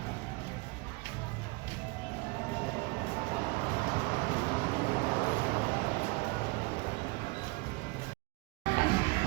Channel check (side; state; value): left; quieter; 25.5 dB